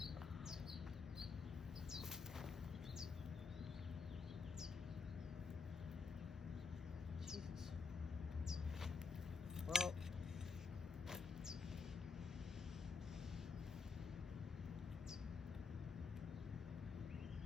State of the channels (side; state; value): right; quieter; 5.1 dB